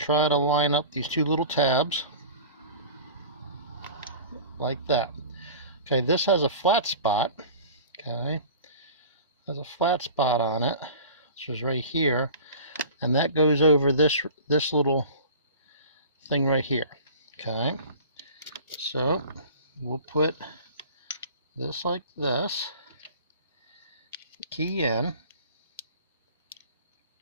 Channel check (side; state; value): both; inverted; correlation -0.40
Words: to line up these two little tabs like that. Okay, this has a flat spot. Okay, has a flat spot on it, which is right here, and that goes over this little thing right here. Okay, so we'll put this like this, key in.